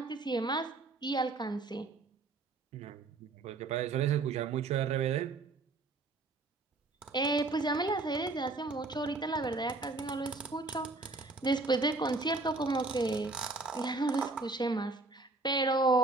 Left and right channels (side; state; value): left; quieter; 3.4 dB